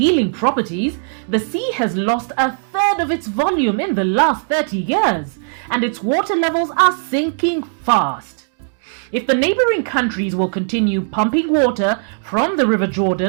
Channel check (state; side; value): silent; left; digital silence